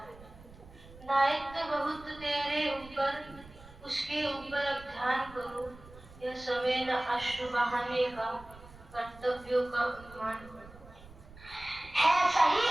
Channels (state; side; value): noise; right; rumble, 20 dB below the sound